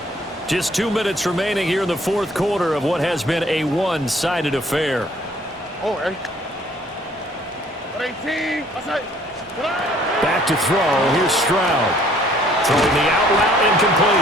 Just 2 minutes remaining here in the fourth quarter of what has been a one-sided affair. Back to throw. Here's Stroud. Throwing the out route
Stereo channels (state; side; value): normal; both; correlation 0.59